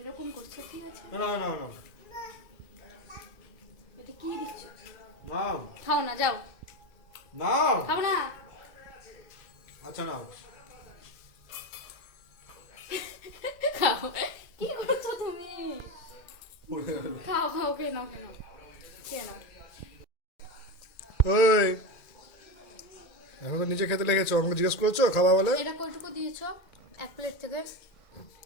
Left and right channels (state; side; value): late; right; 2.2 ms